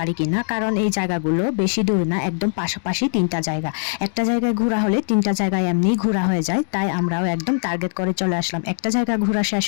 কিনা, কারণ এই জায়গাগুলো বেশি দূর না, একদম পাশাপাশি 3টা জায়গা। একটা জায়গায় ঘোরা হলে 3টা জায়গায় এমনি ঘোরা হয়ে যায়, তাই আমরাও একদম টার্গেট করে চলে আসলাম। একটা জায়গা ঘোরা শেষ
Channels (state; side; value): silent; right; digital silence